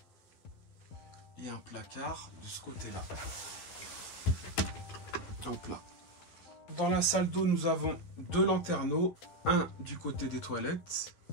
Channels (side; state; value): right; late; 12 ms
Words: Et un placard de ce côté-là. Hop là. Dans la salle d'eau, nous avons 2 lanterneaux. Un du côté des toilettes.